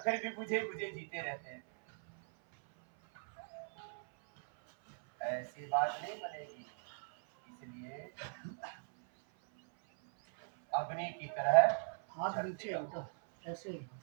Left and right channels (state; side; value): silent; left; 52 dB below the other